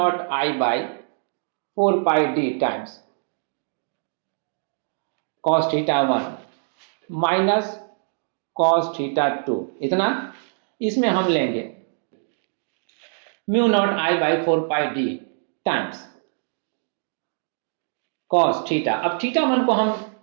I by 4 pi D times cos θ1 minus cos θ2, इतना इसमें हम लेंगे mu naught I by 4 pi D times cos θ। अब θ1 को हम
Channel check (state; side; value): silent; left; digital silence